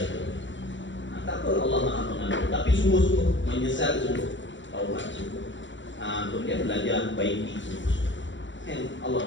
Tak apa, Allah Maha Pengampun, tapi sungguh-sungguh menyesal, sungguh taubat, sungguh. Kemudian belajar baiki sungguh. Allah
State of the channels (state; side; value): late; right; 0.54 ms